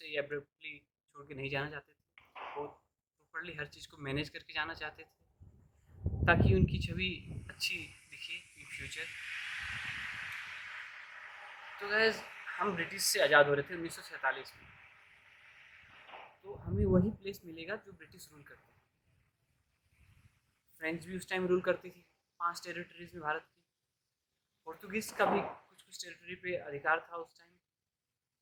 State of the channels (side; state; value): both; identical; correlation 1.00